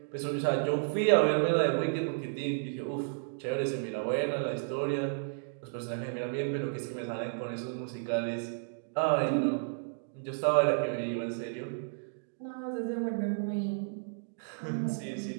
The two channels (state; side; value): silent; left; digital silence